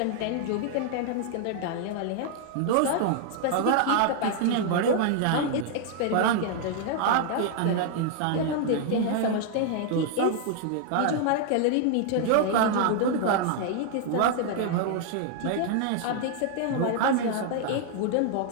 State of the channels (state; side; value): different; both; correlation 0.00